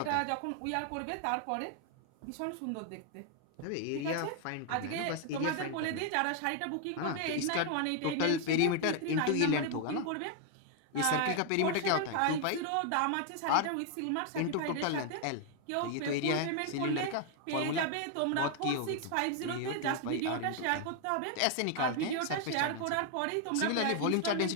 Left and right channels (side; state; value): both; different; correlation 0.00